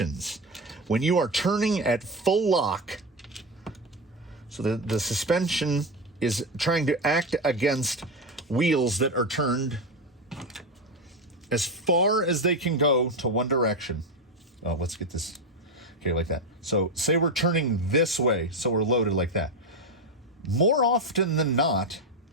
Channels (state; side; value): normal; both; correlation 0.13